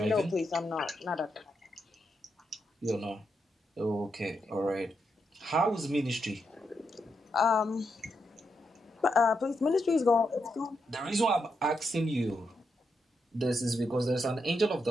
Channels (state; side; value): normal; both; correlation 0.83